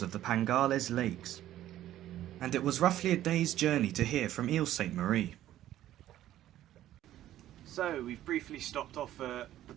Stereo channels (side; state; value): left; quieter; 13.0 dB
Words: of the Pangales Lakes, and it was roughly a day's journey to here from Ile Saint-Marie. So we've briefly stopped off at the